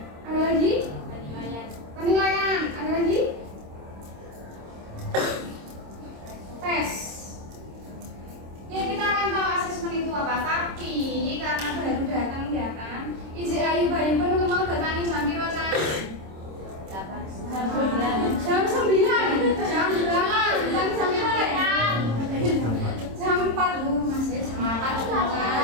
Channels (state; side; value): late; left; 26 ms